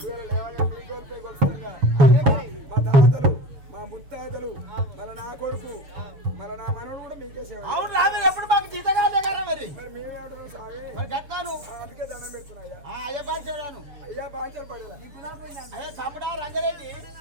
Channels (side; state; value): left; late; 7.0 ms